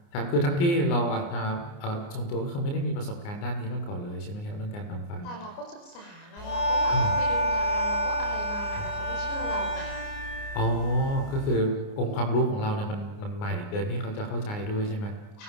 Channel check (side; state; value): right; late; 29 ms